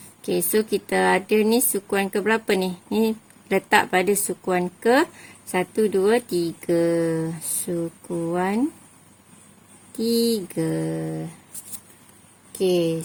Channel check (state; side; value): identical; both; correlation 1.00